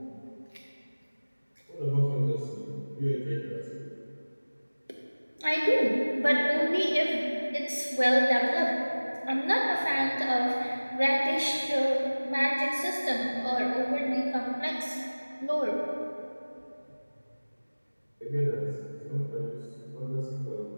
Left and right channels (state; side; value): inverted; both; correlation -1.00